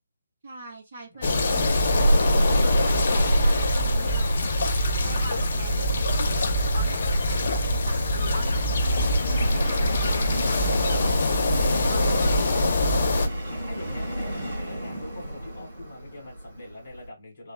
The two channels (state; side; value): inverted; both; correlation -0.80